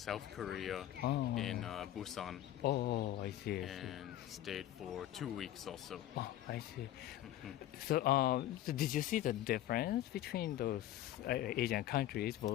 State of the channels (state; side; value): quieter; right; 13.0 dB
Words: Korea in Busan. I see. And stayed for 2 weeks also. I see. So did you see the difference between those Asian countries,